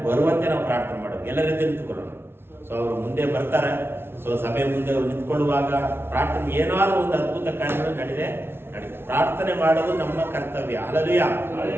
ಬರುವಂತೆ ನಾವು ಪ್ರಾರ್ಥನೆ ಮಾಡೋದು. ಎಲ್ಲ ರೀತಿ ನಿಂತುಕೊಳ್ಳೋಣ. ಸೊ ಅವರು ಮುಂದೆ ಬರ್ತಾರೆ. ಸೊ ಸಭೆ ಮುಂದೆ ಅವ್ರು ನಿಂತ್ಕೊಳ್ಳುವಾಗ ಪ್ರಾರ್ಥನೆ ಏನಾದರೂ ಒಂದು ಅದ್ಭುತ ಕಾರ್ಯಗಳು ನಡೆದೇ ಪ್ರಾರ್ಥನೆ ಮಾಡೋದು ನಮ್ಮ ಕರ್ತವ್ಯ. ಹಲ್ಲೆಲೂಯಾ.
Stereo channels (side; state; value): left; late; 0.11 ms